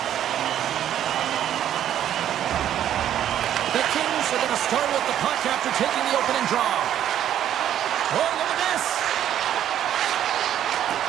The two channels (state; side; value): quieter; left; 10.8 dB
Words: The Kings are going to start with the puck after taking the opening draw. Oh, look at this.